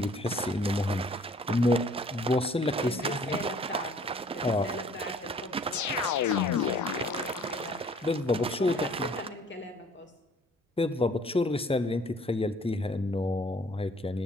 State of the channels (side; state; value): both; normal; correlation 0.55